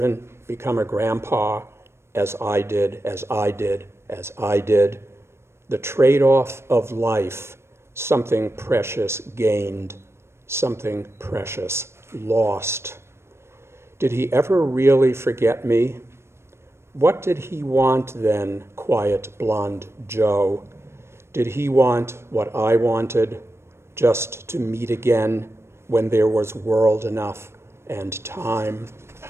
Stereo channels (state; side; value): late; left; 0.12 ms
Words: become a grandpa, as I did, as I did, as I did? The trade-off of life, something precious gained, something precious lost. Did he ever really forget me? What did he want then, quiet blonde Joe? Did he want what I wanted, just to meet again when there was world enough and time?